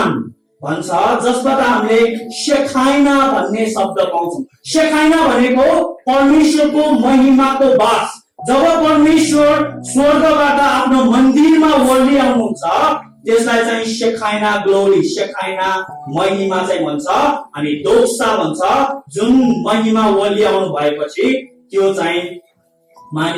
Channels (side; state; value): both; identical; correlation 1.00